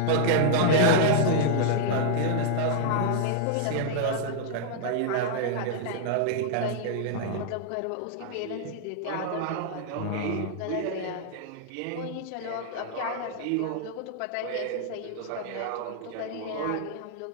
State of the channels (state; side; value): different; both; correlation -0.01